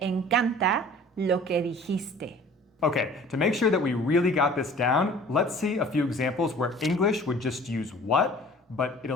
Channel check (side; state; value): both; normal; correlation 0.48